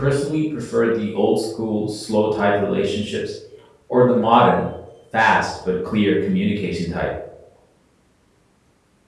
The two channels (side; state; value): both; identical; correlation 1.00